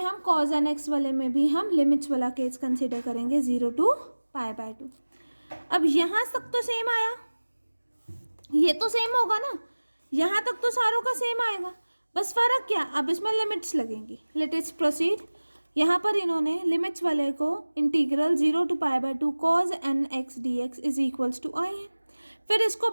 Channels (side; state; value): both; inverted; correlation -1.00